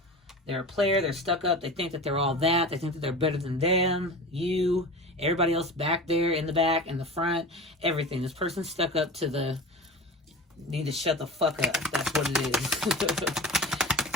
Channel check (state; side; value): normal; both; correlation 0.33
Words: They're a player. They're stuck up. They think that they're all that. They think that they're better than them, you, everybody else back there, in the back, in the front, everything. This person's stuck up to the... Need to shut the fuck up. That's what it